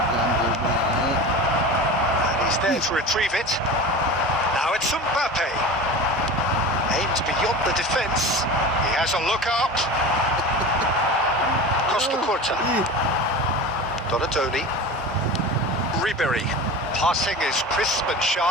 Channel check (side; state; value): both; normal; correlation 0.32